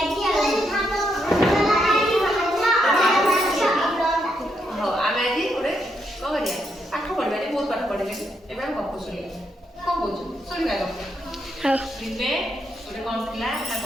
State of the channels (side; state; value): both; normal; correlation 0.79